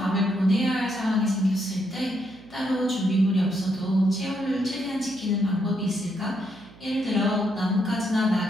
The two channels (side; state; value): right; noise; hum, 23 dB below the sound